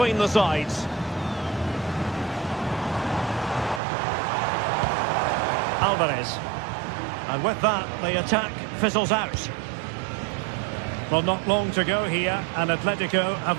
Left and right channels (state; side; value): drops out; left; at 3.8 s